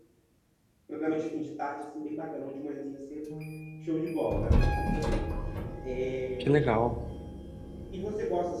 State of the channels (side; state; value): both; identical; correlation 1.00